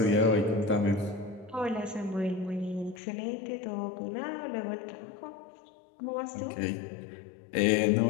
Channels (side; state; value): right; drops out; at 3.0 s